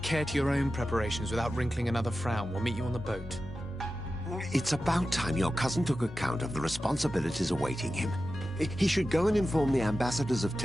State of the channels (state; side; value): normal; both; correlation 0.93